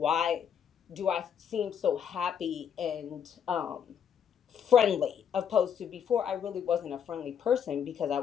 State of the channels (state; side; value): quieter; right; 8.1 dB